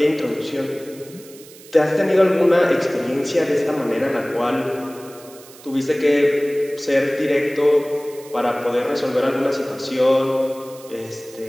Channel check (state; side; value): noise; right; hiss, 21 dB below the sound